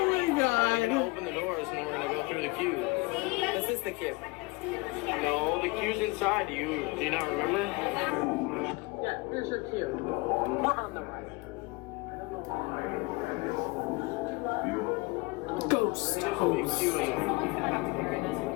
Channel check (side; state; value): right; quieter; 25.5 dB